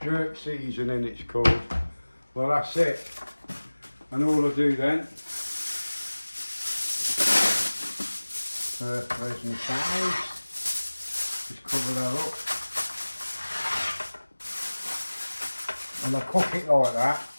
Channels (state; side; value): inverted; both; correlation -1.00